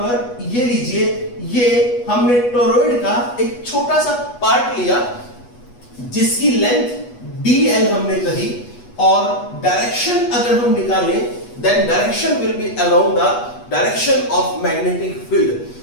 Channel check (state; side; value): late; right; 8.2 ms